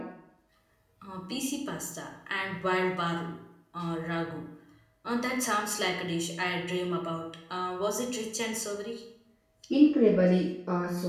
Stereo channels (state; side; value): identical; both; correlation 1.00